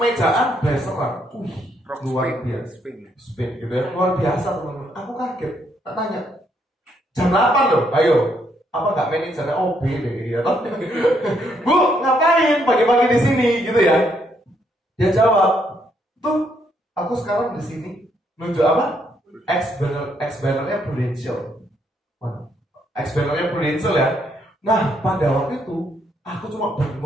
blazeran. Luar biasa. Spin gitu ya. Luar biasa teman-teman. Aku kaget. Tak tanya. Jam 8 loh. Ayo. Apa nggak manajernya OB deh ya? Bu, ngapain pagi-pagi di sini gitu ya? Dia jawab, tuh aku sekarang di sini nunjuk apa? Ex-bannernya Prudential. Ex-bannernya Prudential ya. Nah pada waktu itu aku cuma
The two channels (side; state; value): both; normal; correlation 0.73